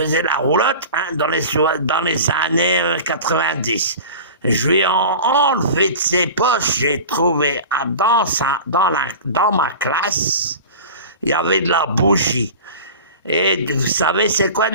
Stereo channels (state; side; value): inverted; both; correlation -0.36